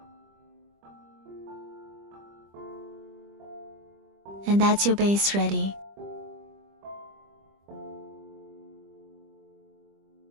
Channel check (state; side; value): late; left; 25 ms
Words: And that's your base ready.